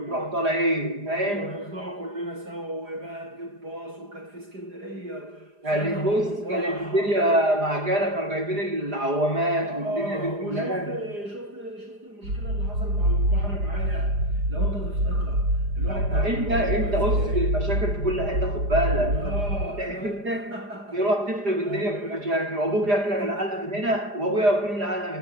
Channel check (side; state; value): left; late; 4.9 ms